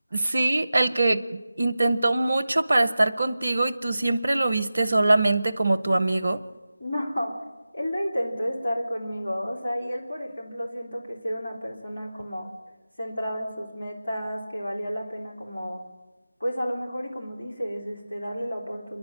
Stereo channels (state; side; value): inverted; both; correlation -0.94